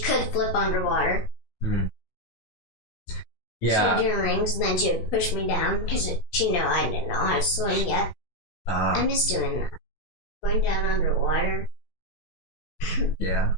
could flip underwater. Yeah. She would do rings, and then she would push me down because she knew I didn't know how to swim yet. I miss doing that. Going down underwater. Yeah.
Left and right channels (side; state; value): right; late; 16 ms